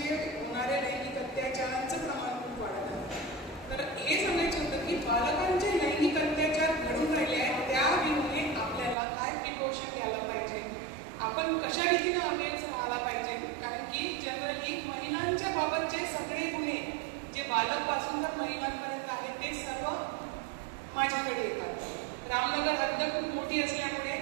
होणाऱ्या लैंगिक अत्याचारांचं प्रमाण खूप वाढत आहे. तर हे सांगायचं होतं की बालकांचे लैंगिक अत्याचार घडून राहिले आहेत त्या विरुद्ध आपल्याला काय प्रिकॉशन घ्यायला पाहिजे, आपण कशा रीतीने अवेअर राहायला पाहिजे. कारण की जनरली महिलांच्या बाबतचे सगळे गुन्हे जे बालकपासून तर महिलांपर्यंत आहेत ते सर्व माझ्याकडे येतात. रामनगर हद्द खूप मोठी असल्यामुळे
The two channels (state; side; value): drops out; left; at 9.0 s